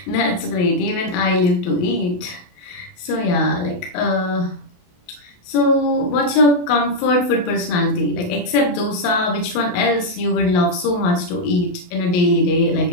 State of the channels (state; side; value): late; right; 28 ms